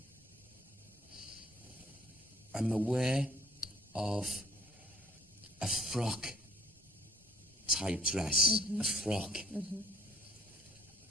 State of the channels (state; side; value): normal; both; correlation 0.58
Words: I'm aware of a frock type dress, a frock,